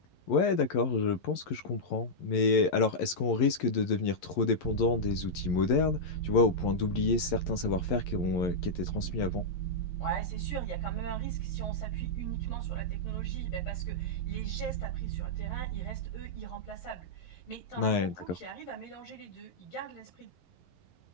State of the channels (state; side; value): late; right; 11 ms